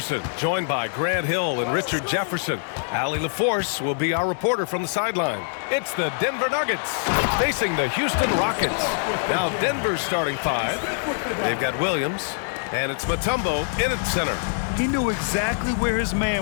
joined by Grant Hill and Richard Jefferson. Allie LaForce will be our reporter from the sideline. It's the Denver Nuggets facing the Houston Rockets. Now Denver's starting five. They've got Williams, and it's Mutombo in at center. He knew exactly where his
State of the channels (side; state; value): right; silent; 63 dB below the other